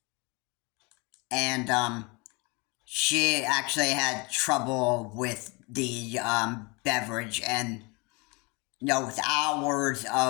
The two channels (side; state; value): right; quieter; 28.3 dB